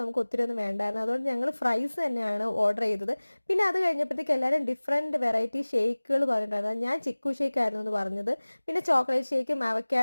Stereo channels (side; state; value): both; inverted; correlation -1.00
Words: നമുക്ക് ഒത്തിരി ഒന്നും വേണ്ടായിരുന്നു. അതുകൊണ്ട് ഞങ്ങൾ ഫ്രൈസ് തന്നെയാണ് ഓർഡർ ചെയ്തത്. പിന്നെ അത് കഴിഞ്ഞപ്പോഴത്തേക്ക് എല്ലാവരും ഡിഫറെൻറ്റ് വെറൈറ്റി ഷേക്കുകൾ പറഞ്ഞിട്ടുണ്ടായിരുന്നു. ഞാൻ ചിക്കു ഷേക്ക് ആയിരുന്നു എന്ന് പറഞ്ഞത്. പിന്നെ ചോക്ലേറ്റ് ഷേക്കും